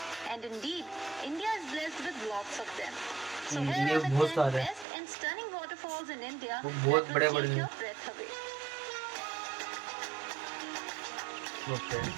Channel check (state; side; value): drops out; left; at 4.9 s